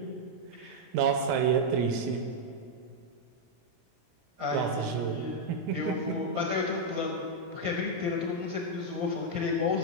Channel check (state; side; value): late; left; 17 ms